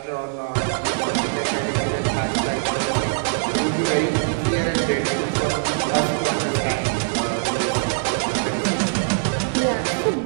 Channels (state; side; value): silent; left; digital silence